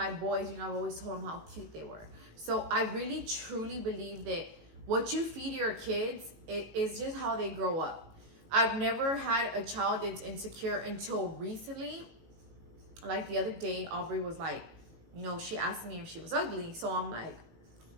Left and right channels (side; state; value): left; late; 18 ms